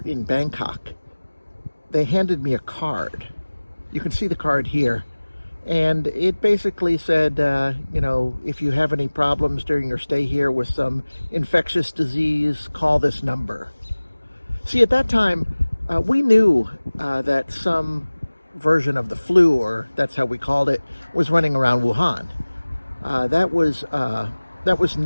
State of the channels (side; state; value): both; inverted; correlation -1.00